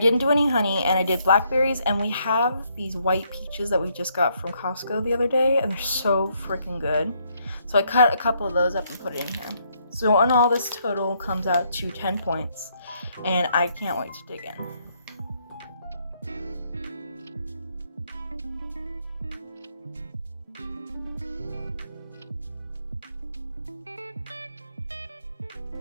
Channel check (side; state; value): both; inverted; correlation -0.73